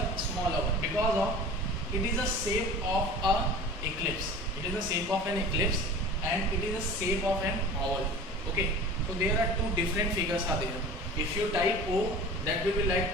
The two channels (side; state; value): both; normal; correlation 0.38